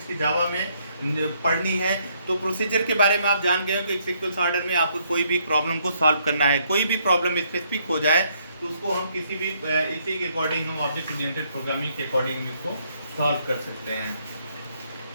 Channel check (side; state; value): both; inverted; correlation -0.71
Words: की जावा में पढ़नी है, तो प्रोसीजर के बारे में आप जान गए हो कि एक सीक्वेंस ऑर्डर में आपको कोई भी प्रॉब्लम को सॉल्व करना है, कोई भी प्रॉब्लम स्पेसिफिक हो जाए तो उसको हम किसी भी इसी के अकॉर्डिंग हम ऑब्जेक्ट ओरिएंटेड प्रोग्रामिंग के अकॉर्डिंग इसको सॉल्व कर सकते हैं।